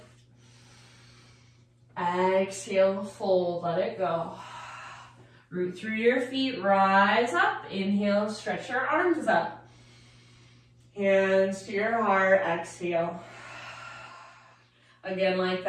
Exhale, fold, let it go. Root through your feet, rise up. Inhale, stretch your arms up. Hands to your heart, exhale. Again, like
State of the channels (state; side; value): identical; both; correlation 1.00